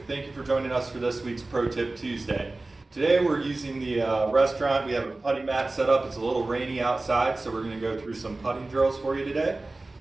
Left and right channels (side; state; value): left; quieter; 3.1 dB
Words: Thank you for joining us for this week's Pro Tip Tuesday. Today we're using the restaurant. We have a putting mat set up. It's a little rainy outside, so we're going to go through some putting drills for you today.